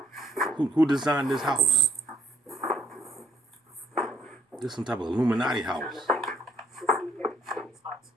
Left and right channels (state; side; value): normal; both; correlation 0.68